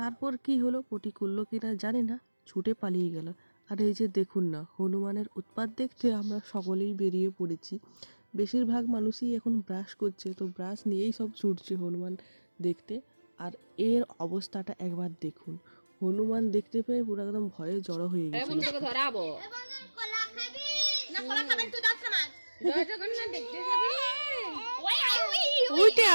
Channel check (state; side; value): inverted; both; correlation -1.00